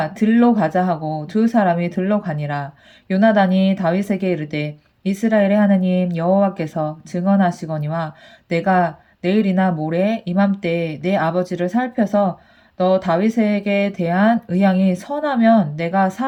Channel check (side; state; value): both; identical; correlation 1.00